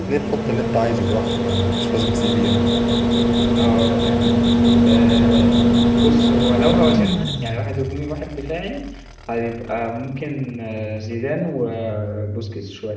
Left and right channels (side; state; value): both; identical; correlation 1.00